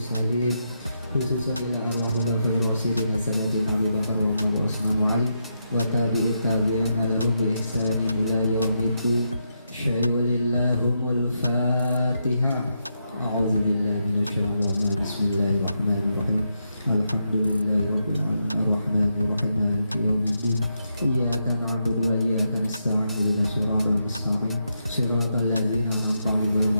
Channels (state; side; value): inverted; both; correlation -0.82